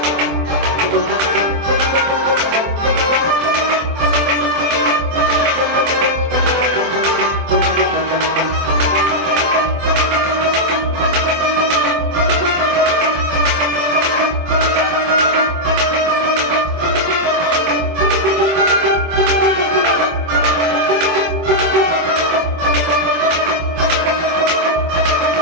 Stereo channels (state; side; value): late; left; 24 ms